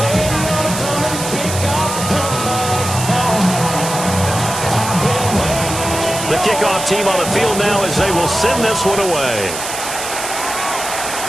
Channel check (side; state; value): right; noise; hiss, 6 dB below the sound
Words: Kickoff team on the field now as they will send this one away.